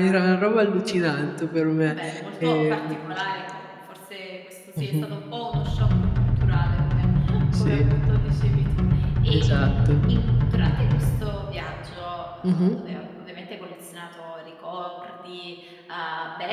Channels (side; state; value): both; identical; correlation 1.00